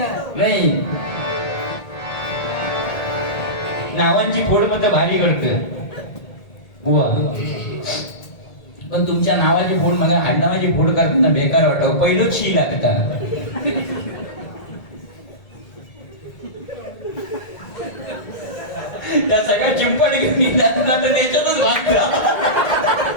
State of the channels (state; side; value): late; right; 1.8 ms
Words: नाही नावांची फोड मत भारी करत बुवा. पण तुमच्या नावाची फोड मला आडनावाची फोड करताना बेकार वाटत. पहिलं शी लागता. त्या सगळ्या चिंपड घेऊन तर त्याच्यातच वागता.